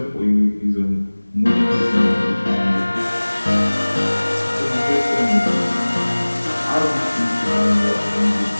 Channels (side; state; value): both; inverted; correlation -1.00